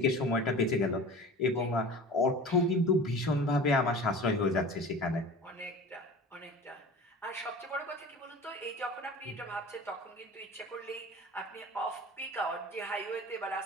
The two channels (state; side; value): normal; both; correlation 0.38